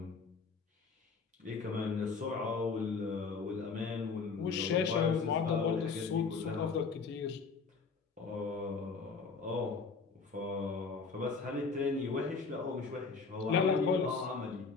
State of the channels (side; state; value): right; quieter; 4.8 dB